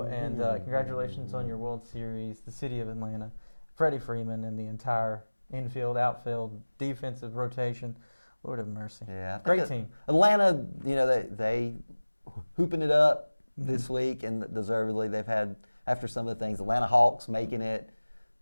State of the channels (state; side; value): inverted; both; correlation -1.00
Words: And congratulations on your World Series, the city of Atlanta, Freddie Freeman, and the entire infield, outfield, defensive rotation. Lord have mercy. Yeah, great team. Atlanta, they hooping it up this week, and deservedly. They've had, after some of the things, Atlanta Hawks making it